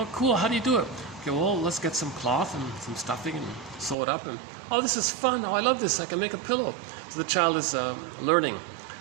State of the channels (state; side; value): drops out; left; at 4.0 s